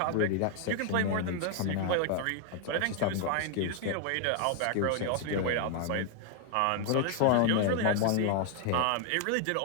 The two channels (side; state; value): both; different; correlation 0.00